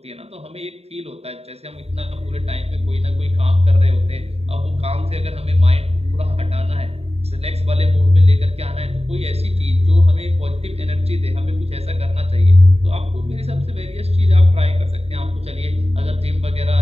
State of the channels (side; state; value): left; late; 0.30 ms